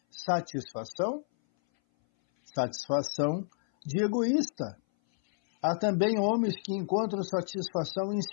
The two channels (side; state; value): right; silent; 58 dB below the other